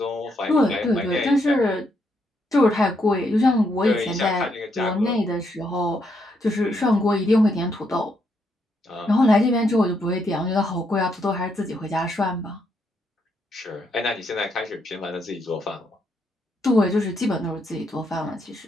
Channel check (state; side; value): normal; both; correlation 0.77